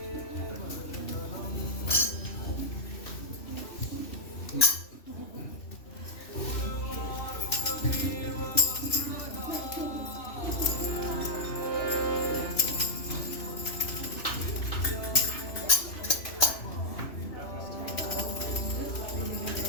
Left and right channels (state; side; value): late; right; 3.0 ms